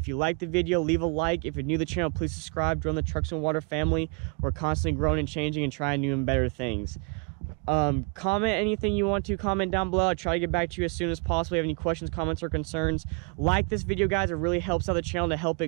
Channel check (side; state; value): left; quieter; 34.6 dB